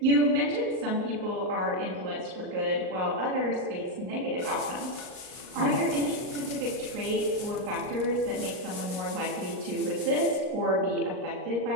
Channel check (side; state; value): left; late; 39 ms